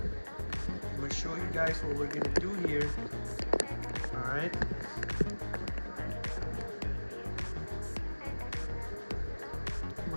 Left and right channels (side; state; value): both; inverted; correlation -1.00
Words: I'm gonna show you guys what we're gonna do here, all right? Come